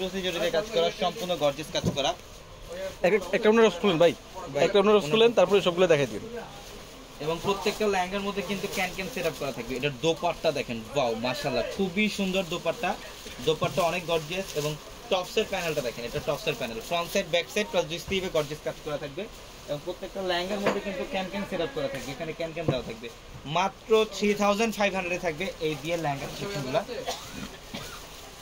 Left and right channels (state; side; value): identical; both; correlation 1.00